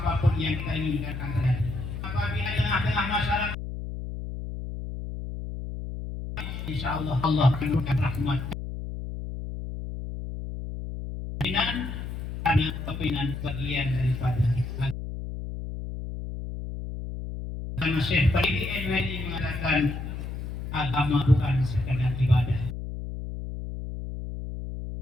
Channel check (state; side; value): noise; left; hum, 7 dB below the sound